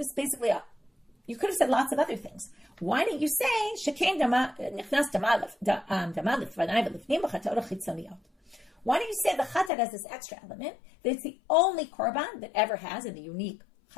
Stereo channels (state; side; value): drops out; right; at 9.7 s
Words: is basically you could have said lots of other things. Why didn't you say shekain nichnas damalif v'nai v'lifnim b'chatot chitzoniyot? Why don't you say the chatat has this extra element that it's the only korban that ever has in the unique